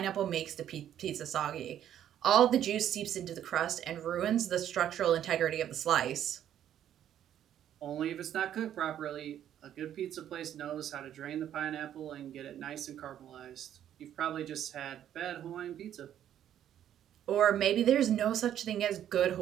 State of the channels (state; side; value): quieter; left; 10.6 dB